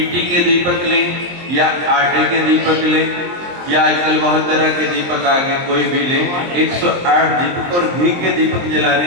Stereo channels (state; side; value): late; left; 23 ms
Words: के दीपक लें या आटे के दीपक लें या आजकल बहुत तरह के दीपक आ गए, कोई भी लें। 108 दीपक और घी के दीपक जलाने